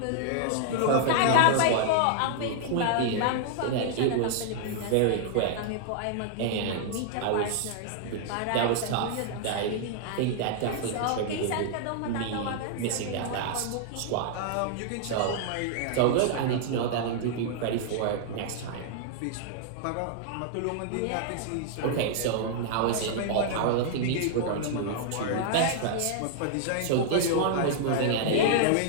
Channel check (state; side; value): different; both; correlation -0.01